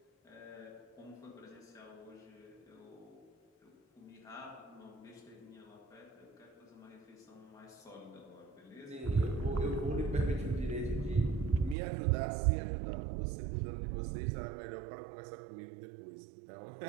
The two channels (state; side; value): drops out; left; at 11.8 s